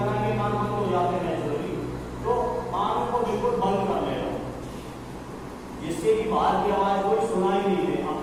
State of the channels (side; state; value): both; identical; correlation 1.00